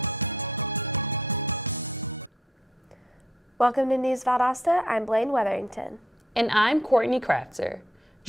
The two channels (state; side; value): normal; both; correlation 0.68